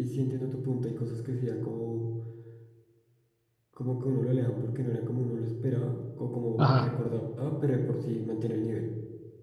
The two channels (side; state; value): both; identical; correlation 1.00